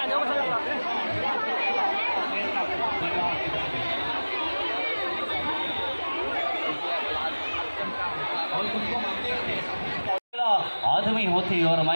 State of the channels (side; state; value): both; inverted; correlation -1.00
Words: आदमी होती और